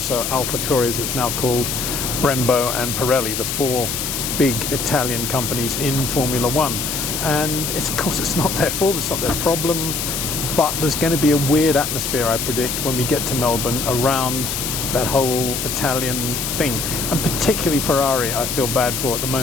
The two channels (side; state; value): left; noise; hiss, 2 dB below the sound